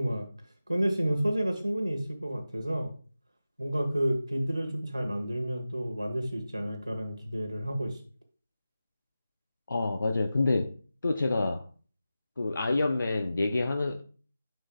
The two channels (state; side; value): inverted; both; correlation -0.94